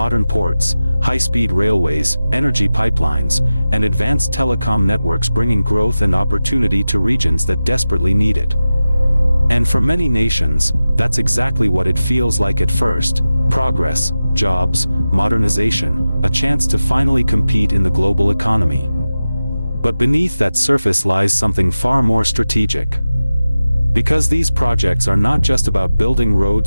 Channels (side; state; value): both; inverted; correlation -0.95